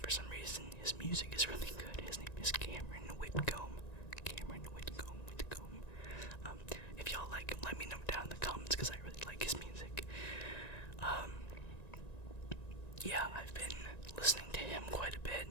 for some reason his music is really good. His name is Cameron Whitcomb. Cameron Whitcomb. If y'all like him, let me know down in the comments, because I really like his music. Yeah, I've been listening to him quite a bit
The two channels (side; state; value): right; late; 1.9 ms